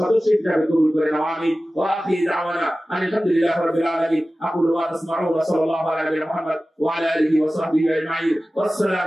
হিসেবে কবুল করে নাও। আমিন। ওয়া আখিরু দাওয়ানা আলহামদুলিল্লাহি রাব্বিল আলামিন। আকুলু ওয়া আসমাউন ওয়া সাল্লাল্লাহু আলা মুহাম্মদ ওয়া আলা আলিহি ওয়া সাহবিহি আজমাইন।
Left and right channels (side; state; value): both; normal; correlation 0.96